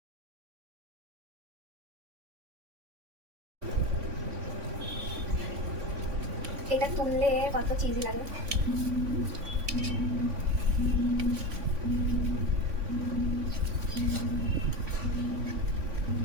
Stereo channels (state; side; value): late; left; 3.5 ms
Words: এটা তুললে কত চিজ লাগে।